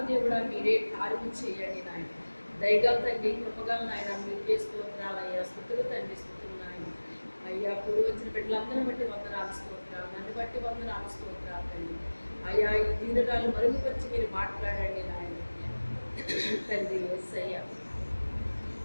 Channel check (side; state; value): both; inverted; correlation -1.00